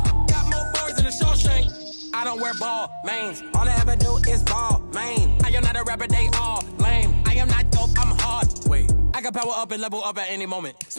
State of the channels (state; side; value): inverted; both; correlation -1.00